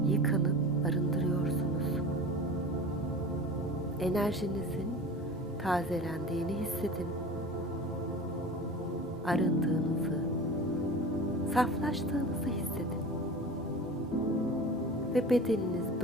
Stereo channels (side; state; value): both; normal; correlation 0.36